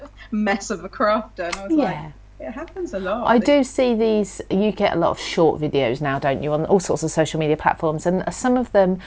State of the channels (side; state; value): both; identical; correlation 1.00